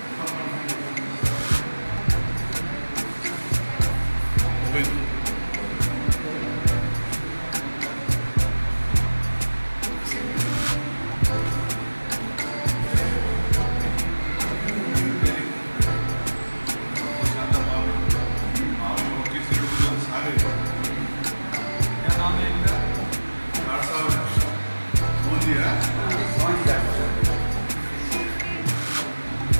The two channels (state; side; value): inverted; both; correlation -1.00